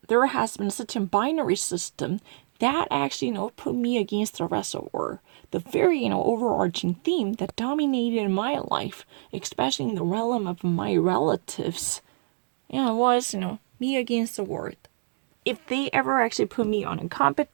has been such a binary system that actually, put me against the rest of the world. The very, overarching theme that dominated my life, especially in the realm of my relatives, was, me against the world. If they ever actually put me on a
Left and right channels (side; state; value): left; silent; digital silence